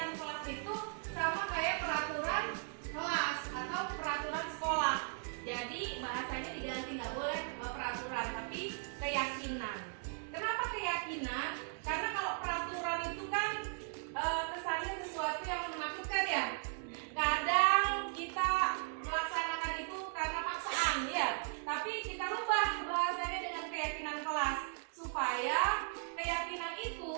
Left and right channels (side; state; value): left; silent; 53 dB below the other